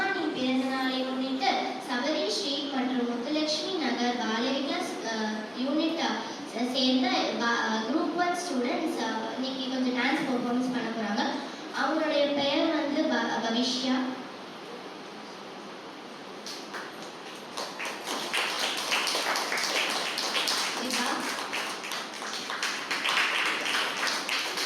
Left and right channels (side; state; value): both; identical; correlation 1.00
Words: பிறந்த நாளை முன்னிட்டு சபரி ஸ்ட்ரீட் மற்றும் முத்துலட்சுமி நகர் பாலவிகாஸ் யூனிட் சேர்ந்த குரூப் 1 ஸ்டூடெண்ட்ஸ் இன்னைக்கு கொஞ்சம் டான்ஸ் பெர்ஃபார்மன்ஸ் பண்ண போறாங்க. அவங்களுடைய பெயர் வந்து பவிஷ்யா.